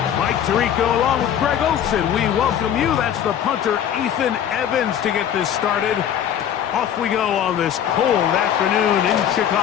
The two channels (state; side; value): quieter; right; 9.7 dB